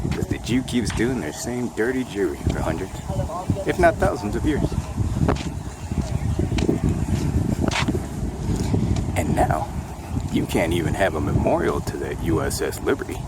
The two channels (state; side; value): identical; both; correlation 1.00